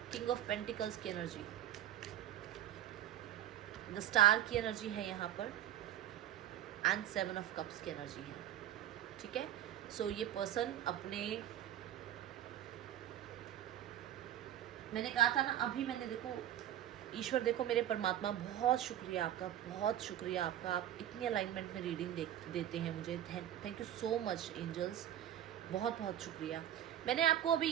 किंग ऑफ पेंटिकल्स की एनर्जी, द स्टार की एनर्जी है यहाँ पर, एंड 7 ऑफ कप्स की एनर्जी है, ठीक है। सो ये पर्सन अपने, मैंने कहा था ना अभी, मैंने देखो ईश्वर, देखो मेरे परमात्मा, बहुत शुक्रिया आपका, बहुत शुक्रिया आपका, आप इतनी अलाइनमेंट में रीडिंग देते हैं मुझे। Thank you so much angels, बहुत बहुत शुक्रिया। मैंने आपको अभी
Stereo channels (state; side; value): quieter; left; 11.7 dB